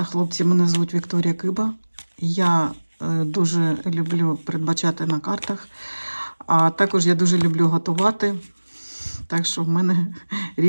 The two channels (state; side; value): inverted; both; correlation -1.00